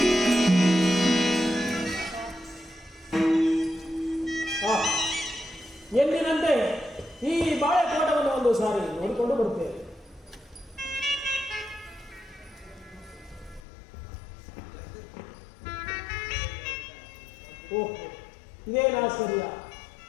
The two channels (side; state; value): right; drops out; at 13.6 s